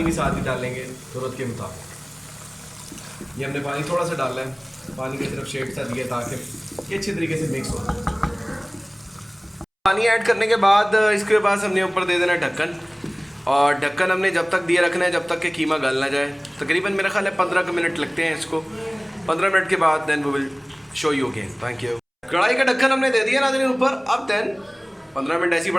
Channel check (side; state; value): both; identical; correlation 1.00